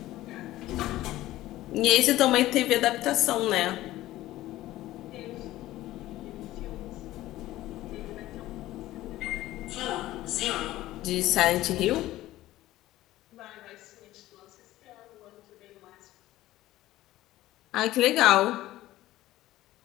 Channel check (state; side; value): quieter; right; 15.8 dB